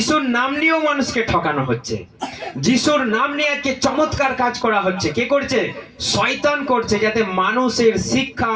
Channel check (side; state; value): both; identical; correlation 1.00